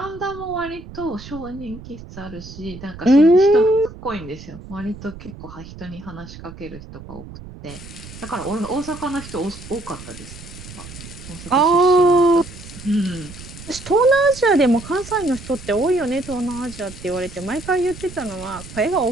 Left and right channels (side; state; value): right; noise; rumble, 15 dB below the sound